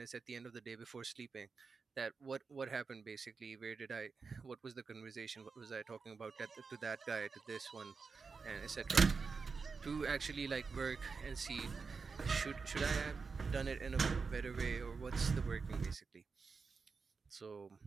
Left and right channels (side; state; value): left; quieter; 4.9 dB